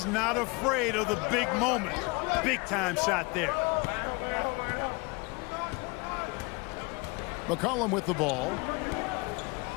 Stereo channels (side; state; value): right; quieter; 28.3 dB